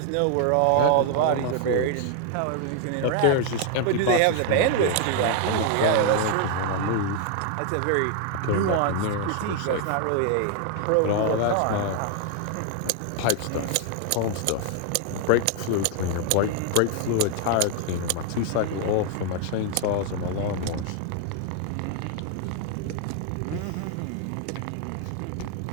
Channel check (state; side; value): different; both; correlation 0.00